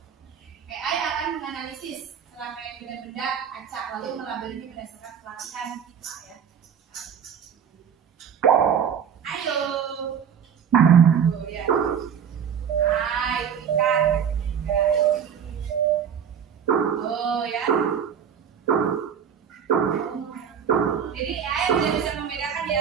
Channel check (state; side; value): quieter; left; 7.8 dB